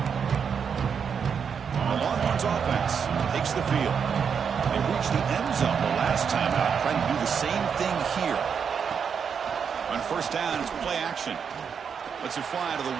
The Longhorns offense takes the field. They reached the end zone the last time out, trying to do the same thing here. On 1st down, it's play action. Lets it fly to the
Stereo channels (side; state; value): left; quieter; 6.8 dB